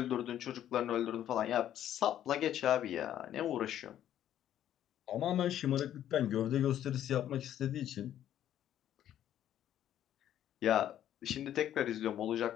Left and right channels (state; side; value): quieter; right; 11.2 dB